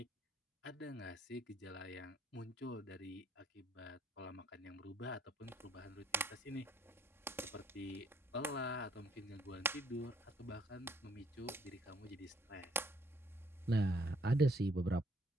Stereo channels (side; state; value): both; normal; correlation 0.64